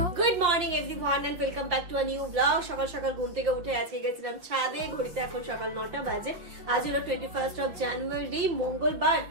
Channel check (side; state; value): left; late; 5.7 ms